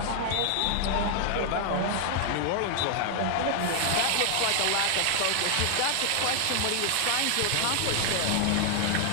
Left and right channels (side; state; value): both; different; correlation 0.00